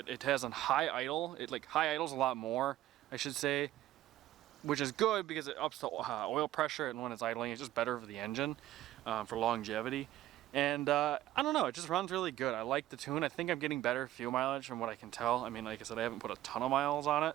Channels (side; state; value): left; quieter; 14.3 dB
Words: It has a high idle. High idles a lot more, I should say, which is good because it ups the oil pressure, and when it's idling, it's just better for the engine, for longevity. And I don't know, it just runs really good. I like the tune. I think I'm getting better fuel mileage from what I can tell. I mean, like I said, I haven't put a ton of miles on